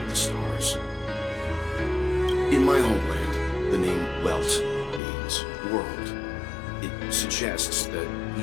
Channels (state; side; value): drops out; right; at 5.0 s